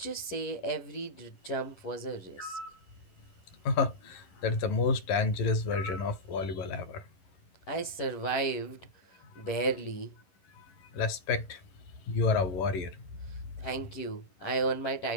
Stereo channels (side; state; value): right; late; 11 ms